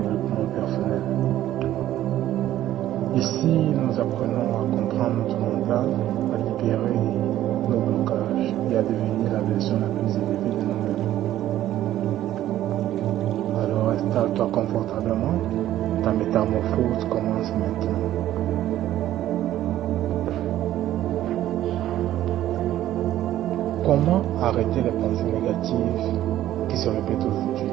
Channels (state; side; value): quieter; left; 13.2 dB